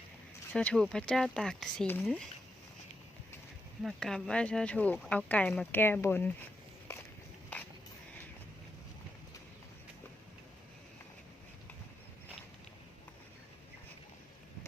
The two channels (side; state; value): both; normal; correlation 0.85